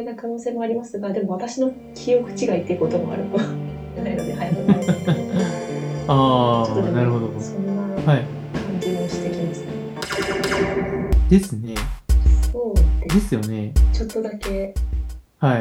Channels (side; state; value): both; identical; correlation 1.00